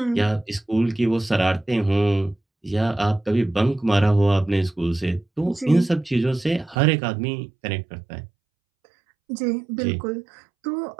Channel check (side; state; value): left; drops out; at 6.8 s